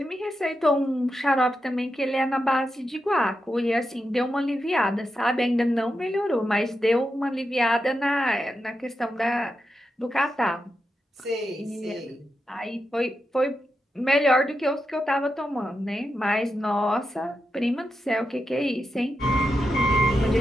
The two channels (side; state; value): both; normal; correlation 0.87